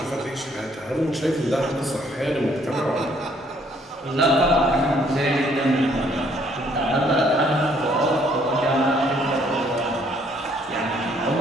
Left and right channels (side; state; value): both; normal; correlation 0.65